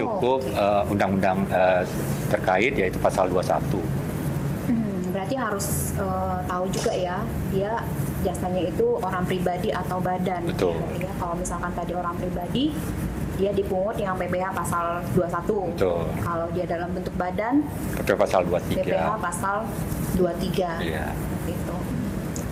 undang-undang terkait yaitu pasal 21. Berarti harus tahu juga ya, dia jasanya itu orang pribadi atau badan. Betul. Ya, kalau misalkan tadi orang pribadi, dia dipungut yang PPh pasal 21. Betul. Kalau dia dalam bentuk badan, PPh pasal 23. PPh pasal 23. Iya. Gitu.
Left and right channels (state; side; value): identical; both; correlation 1.00